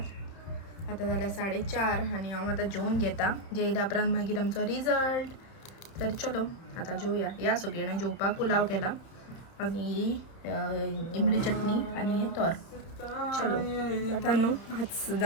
आतां जाल्यार 4:30 आनी हांव आतां जेवून घेता जेयल्या उपरांत मागीर आमचो रिजल्ट तर चलो आतां जेवया या सगळीं जाणां जेवपाक पुलाव केला आनी इमली चटणी आनी हे तोर चलो आतां न्हू 5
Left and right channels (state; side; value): late; right; 31 ms